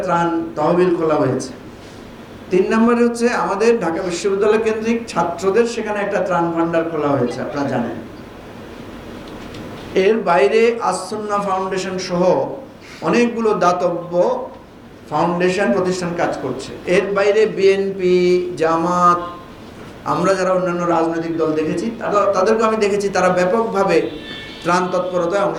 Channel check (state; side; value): identical; both; correlation 1.00